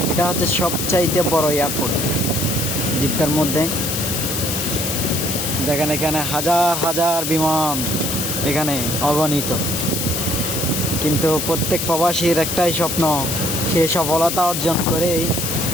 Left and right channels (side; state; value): left; noise; hiss, 2 dB below the sound